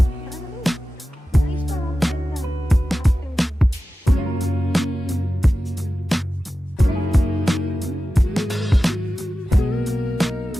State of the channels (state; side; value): normal; both; correlation 0.94